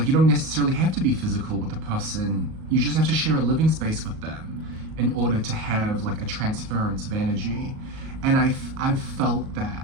you don't necessarily have to be physical with a person. You just have to share a living space with them in order to have like a transference of energy. And I've felt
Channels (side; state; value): left; late; 37 ms